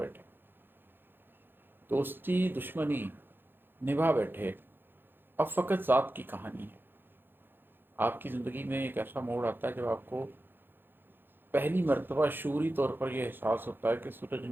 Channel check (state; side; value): late; left; 0.099 ms